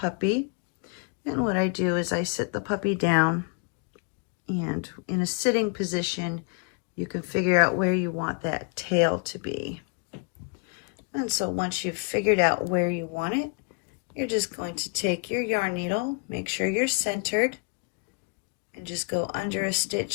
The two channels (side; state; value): right; quieter; 35.9 dB